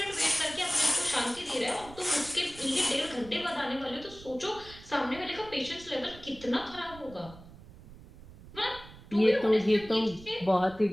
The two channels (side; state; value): right; noise; rumble, 19 dB below the sound